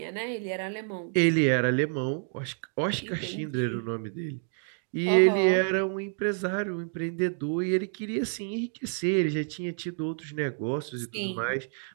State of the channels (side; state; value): left; silent; 59 dB below the other